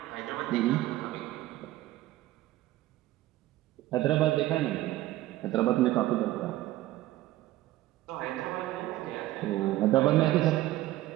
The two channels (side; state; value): left; quieter; 15.9 dB